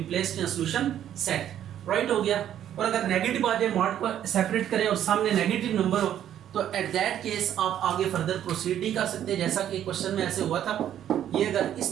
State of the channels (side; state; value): left; quieter; 10.7 dB